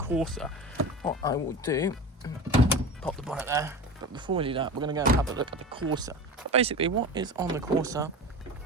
What I will do, pop the bonnet there, but before we do that, we're going to go and have a look at the Corsa. But basically what is on the Corsa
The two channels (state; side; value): normal; both; correlation 0.30